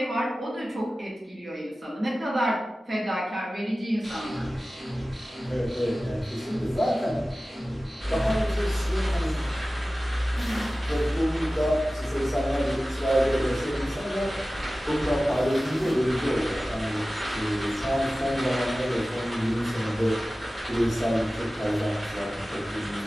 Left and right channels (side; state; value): both; normal; correlation 0.96